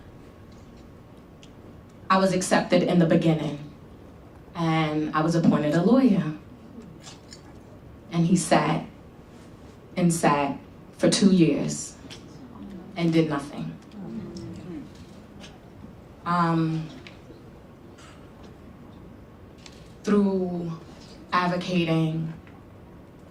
I was accepted in the beginning, and I was appointed a lawyer. And he sat and sat for 2 years and did nothing. Through advocating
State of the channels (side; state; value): both; identical; correlation 1.00